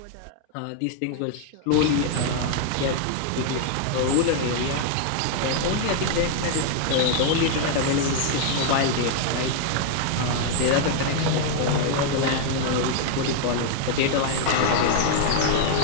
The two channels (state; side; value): different; both; correlation 0.00